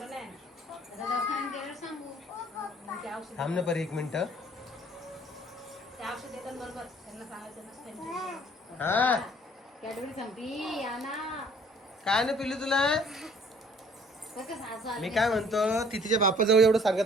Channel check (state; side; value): normal; both; correlation 0.56